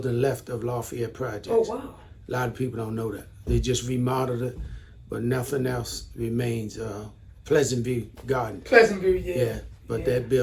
left of Lafayette Projects. Oh, wow. A lot of people don't know that. They just remodeled it, but nothing else remains. Pleasant View Garden. Pleasant View, yeah. Yeah, but that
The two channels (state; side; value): identical; both; correlation 1.00